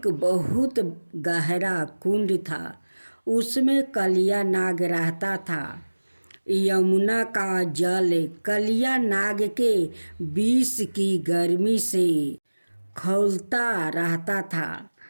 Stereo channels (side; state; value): both; inverted; correlation -1.00